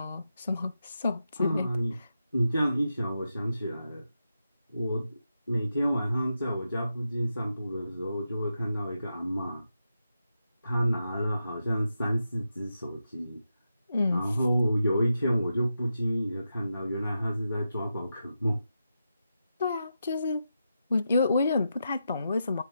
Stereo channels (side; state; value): both; inverted; correlation -0.87